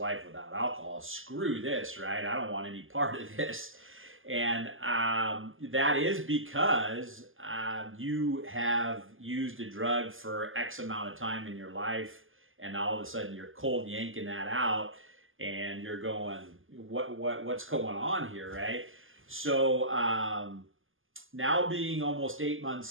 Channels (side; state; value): left; late; 0.59 ms